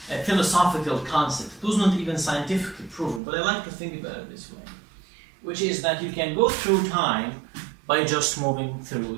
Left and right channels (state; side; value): drops out; left; at 3.2 s